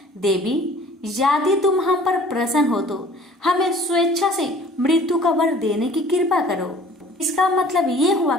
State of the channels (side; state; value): both; normal; correlation 0.50